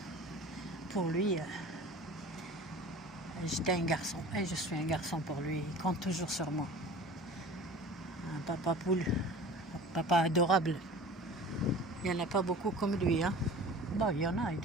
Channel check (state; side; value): normal; both; correlation 0.41